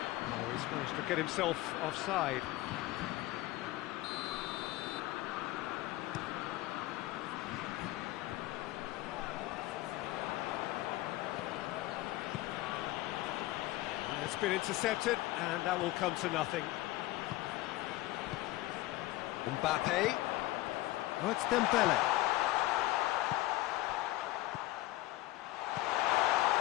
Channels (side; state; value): right; quieter; 17.6 dB